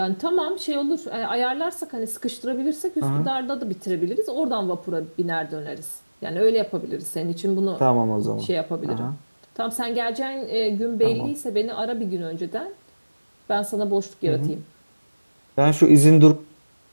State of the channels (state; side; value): inverted; both; correlation -1.00